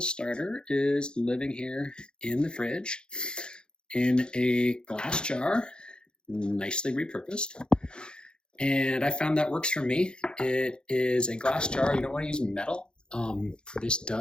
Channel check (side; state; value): right; late; 0.049 ms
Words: starter is living here in the fridge in a glass jar, nicely repurposed. And I found that works for me. It is a glass jar. You don't want to use metal. This